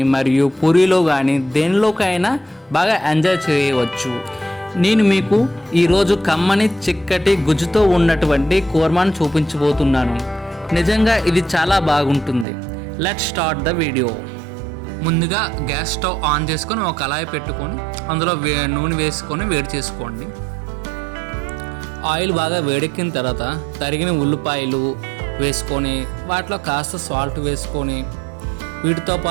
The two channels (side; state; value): left; drops out; at 12.5 s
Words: మరియు పూరీలో కానీ దేనిలోకైనా బాగా ఎంజాయ్ చేయవచ్చు. నేను మీకు ఈరోజు కమ్మని చిక్కటి గుజ్జుతో ఉన్నటువంటి కూర్మాను చూపించబోతున్నాను. నిజంగా ఇది చాలా బాగుంటుంది. Let's start the video. ముందుగా గ్యాస్ స్టవ్ ఆన్ చేసుకొని ఒక కళాయి పెట్టుకొని అందులో నూనె వేసుకొని వేడి చేసుకోండి. ఆయిల్ బాగా వేడెక్కిన తర్వాత తరిగిన ఉల్లిపాయలు వేసుకొని వాటిలో కాస్త సాల్ట్ వేసుకొని వీటితో